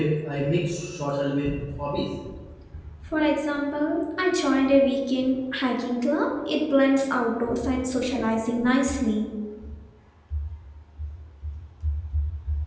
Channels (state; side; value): identical; both; correlation 1.00